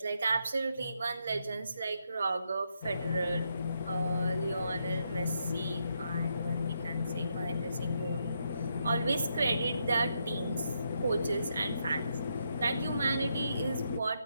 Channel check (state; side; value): inverted; both; correlation -0.79